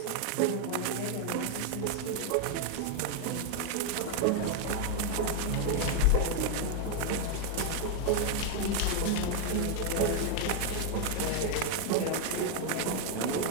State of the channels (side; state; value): both; different; correlation 0.00